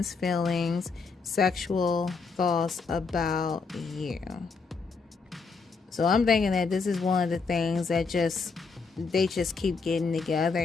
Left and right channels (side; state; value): right; quieter; 4.7 dB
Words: feelings, sexual thoughts about you. So I'm thinking that this is one of the things that they just keep getting together,